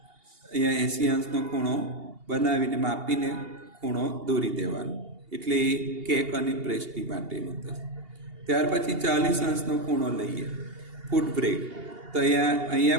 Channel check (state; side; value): late; left; 2.8 ms